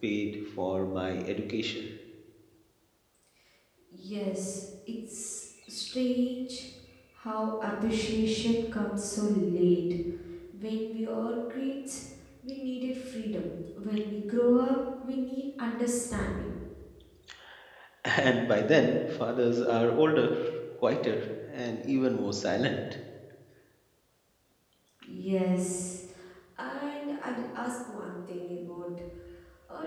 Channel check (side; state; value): both; identical; correlation 1.00